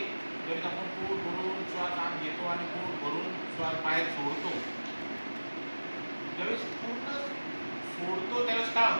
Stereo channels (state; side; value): inverted; both; correlation -1.00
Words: ज्यावेळेस आपण पोट भरून श्वास आत घेतो आणि पोट भरून श्वास बाहेर सोडतो, ज्यावेळेस पूर्ण सोडतो त्यावेळेस काय